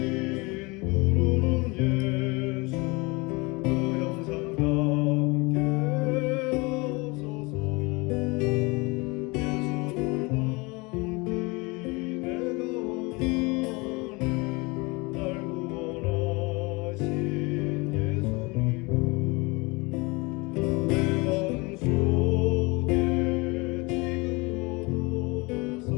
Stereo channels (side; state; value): right; quieter; 26.3 dB